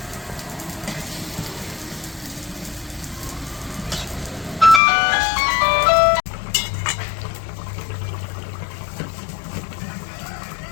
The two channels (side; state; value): right; drops out; at 4.8 s